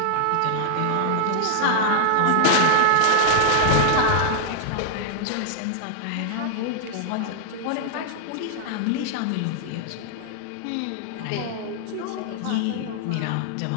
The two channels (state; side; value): different; both; correlation -0.01